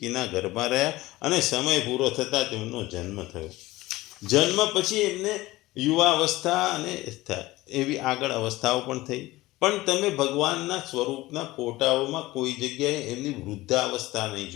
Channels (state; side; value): quieter; right; 18.6 dB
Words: ગર્ભમાં રહ્યા અને સમય પૂરો થતાં તેમનો જન્મ થયો. જન્મ પછી એમને યુવા અવસ્થા અને એવી આગળ અવસ્થાઓ પણ થઈ. પણ તમે ભગવાનના સ્વરૂપના ફોટાઓમાં કોઈ જગ્યાએ એમની વૃદ્ધાવસ્થા નહીં